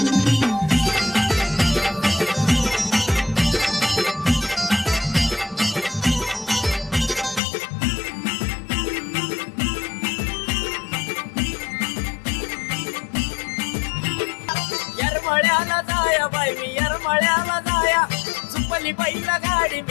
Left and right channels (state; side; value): drops out; right; at 7.4 s